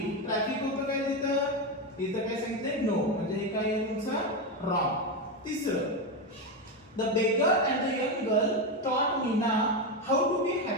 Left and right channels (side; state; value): both; normal; correlation 0.11